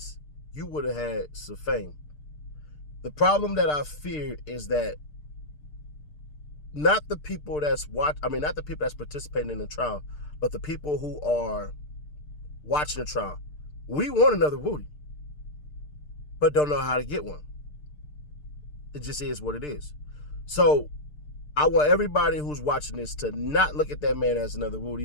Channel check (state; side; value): late; right; 6.7 ms